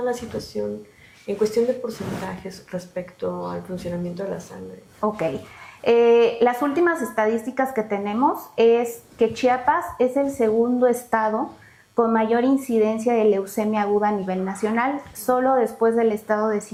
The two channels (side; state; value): both; identical; correlation 1.00